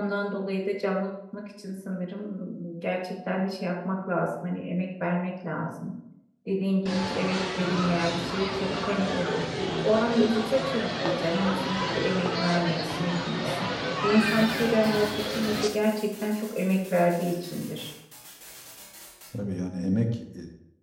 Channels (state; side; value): identical; both; correlation 1.00